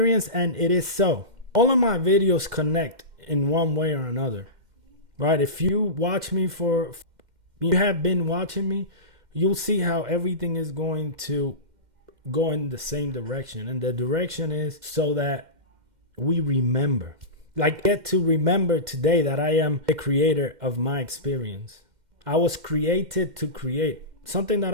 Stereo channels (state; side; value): late; left; 2.1 ms